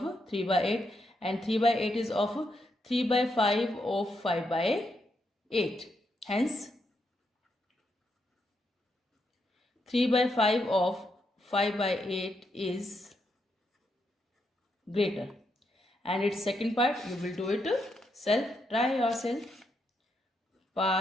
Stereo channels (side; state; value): both; normal; correlation 0.80